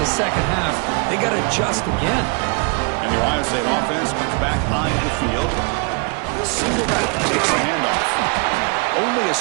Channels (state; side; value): quieter; left; 34.2 dB